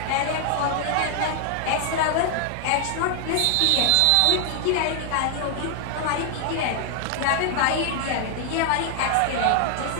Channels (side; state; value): both; different; correlation 0.00